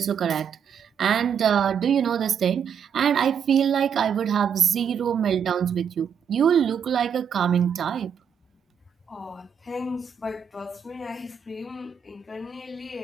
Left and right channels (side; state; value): left; quieter; 7.5 dB